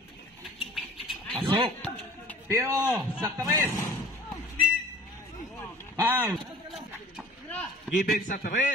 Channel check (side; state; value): both; normal; correlation 0.47